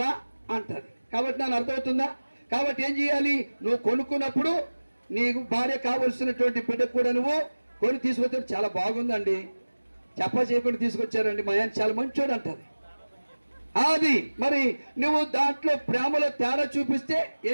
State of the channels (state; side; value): inverted; both; correlation -1.00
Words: అంటది. కాబట్టి నాకు అర్థమవుతుందా? కాబట్టి ఏం చేయాలి, నువ్వు కొనుక్కున్నప్పుడు నీకు భార్య కావలసినటువంటి బిడ్డకు కూడా నువ్వు కొని తీసుకొచ్చాడు, చాలా బాగుందండి, చేయకుండా తీసుకొచ్చారండి, మా ఆయన చాలా మంచోడు అంటది. అది మరి నువ్వు దాంట్లో ప్రేమలో తేడా చూపిస్తే